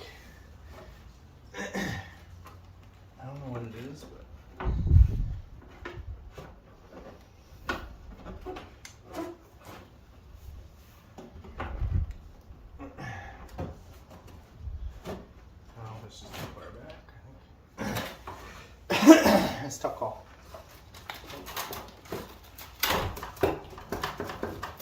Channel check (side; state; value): both; identical; correlation 1.00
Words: I don't know what it is, but oh, it's just too far back. It's a tough call.